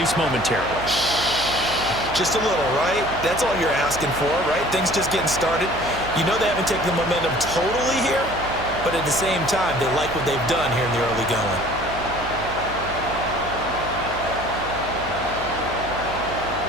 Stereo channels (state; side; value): noise; right; hum, 12 dB below the sound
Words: momentarily. Just a little, right? That's all you're asking for, right? Things just getting started. You know they haven't taken the momentum totally here, but at the same time, they like what they've done here in the early going.